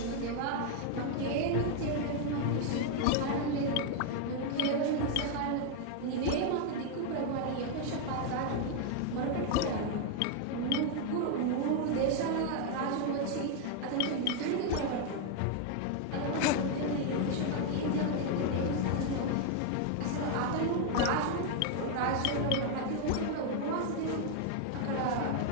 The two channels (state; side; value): different; both; correlation 0.00